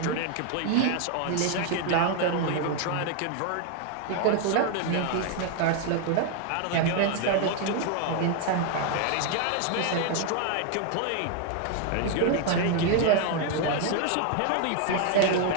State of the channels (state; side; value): different; both; correlation 0.00